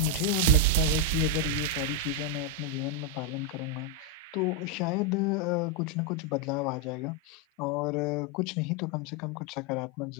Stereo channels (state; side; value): normal; both; correlation 0.01